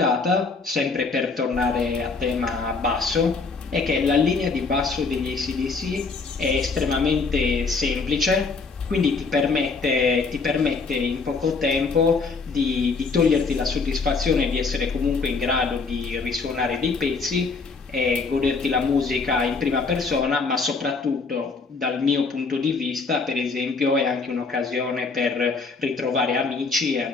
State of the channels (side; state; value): right; quieter; 4.4 dB